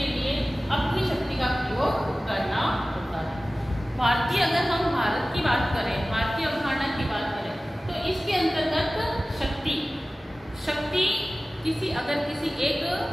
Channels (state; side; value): normal; both; correlation 0.97